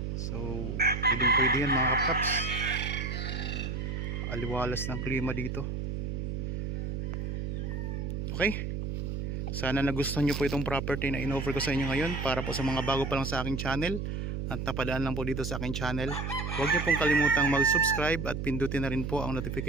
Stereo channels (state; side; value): noise; right; hum, 3 dB below the sound